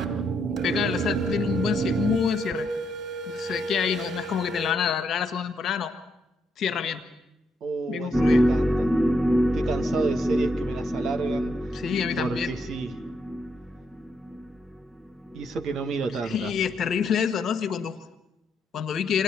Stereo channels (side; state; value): both; normal; correlation 0.77